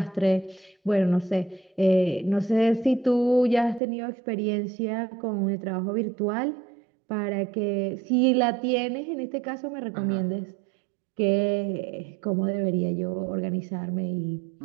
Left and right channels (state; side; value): drops out; left; at 3.8 s